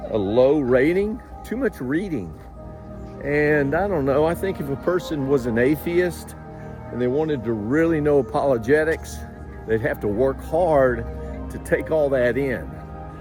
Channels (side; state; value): both; identical; correlation 1.00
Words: a low rating, too much reading. And I don't know, I think if a person was an atheist and they wanted to really know apologetics, they'd have to work hard to take all that in.